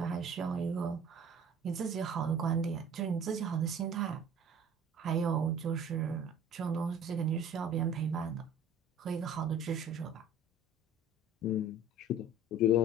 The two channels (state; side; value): normal; both; correlation 0.46